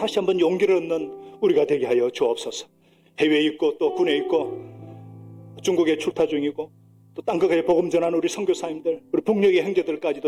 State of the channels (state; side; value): identical; both; correlation 1.00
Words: 한번 용기를 얻는 우리가 되게 하여 주옵소서. 해외에 있고 또 군에 있고 중국에 출타 중이고 또 땅끝에 복음 전하는 우리 선교사님들, 우리 북녘의